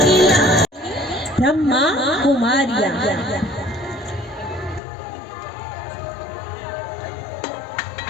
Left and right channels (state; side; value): drops out; right; at 4.8 s